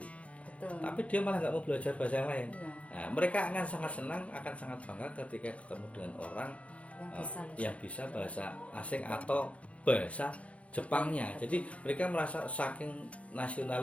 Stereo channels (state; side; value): late; right; 0.064 ms